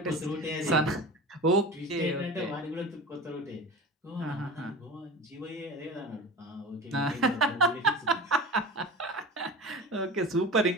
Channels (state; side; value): normal; both; correlation 0.33